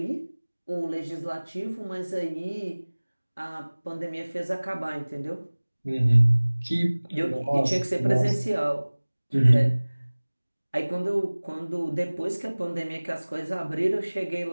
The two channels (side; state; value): both; inverted; correlation -1.00